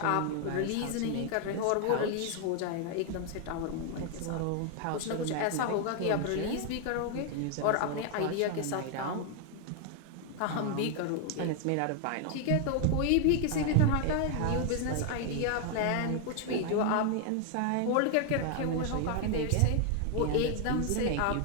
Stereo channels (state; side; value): different; both; correlation 0.00